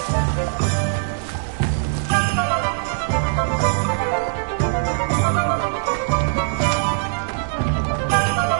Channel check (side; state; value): left; silent; digital silence